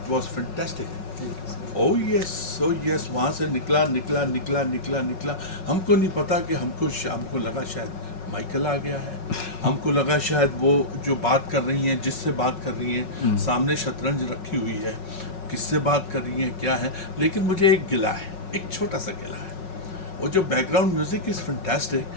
was fantastic. Oh yes, वहाँ से निकला। हमको नहीं पता कि हमको लगा शायद माइकल आ गया है, हमको लगा शायद वो जो बात कर रही हैं, जिससे बात कर रही हैं, सामने शतरंज रखी हुई है, किससे बात कर रही हैं, क्या है। लेकिन मुझे एक गिला है, एक छोटा सा गिला है, वो जो बैकग्राउंड म्यूजिक इज़ फैंटास्टिक,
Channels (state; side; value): late; right; 5.4 ms